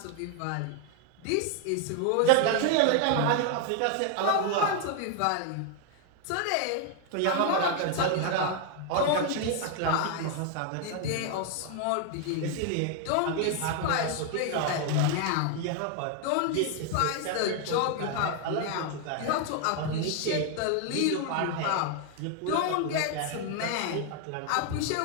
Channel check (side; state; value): both; different; correlation 0.00